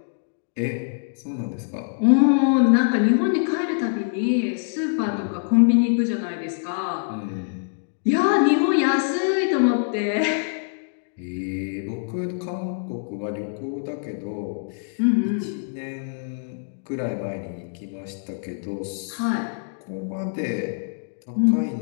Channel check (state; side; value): silent; right; digital silence